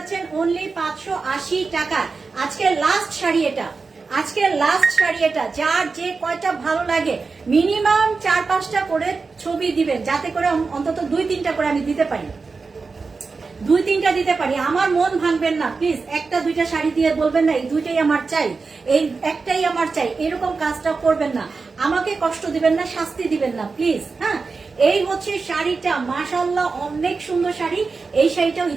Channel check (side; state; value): left; quieter; 4.4 dB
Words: অনলি 580 টাকা। আজকের লাস্ট শাড়ি এটা, আজকের লাস্ট শাড়ি এটা। যার যে কয়টা ভালো লাগে মিনিমাম 4-5টা করে ছবি দিবেন, যাতে করে অন্তত 2-3টা করে আমি দিতে পারি, 2-3টা দিতে পারি। আমার মন ভাঙবেন না প্লিজ, 1-2টা শাড়ি দিয়ে বলবেন না এই 2টাই আমার চাই, এই একটাই আমার চাই, এরকম কাজটা করবেন না, আমাকে কষ্ট দিবেন না, শাস্তি দিবেন না প্লিজ। হ্যাঁ, এই হচ্ছে শাড়িটা, মাশাআল্লাহ অনেক সুন্দর শাড়ি। এই শাড়িটাও